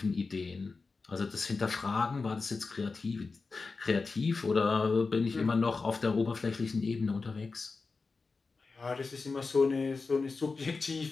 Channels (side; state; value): right; quieter; 4.2 dB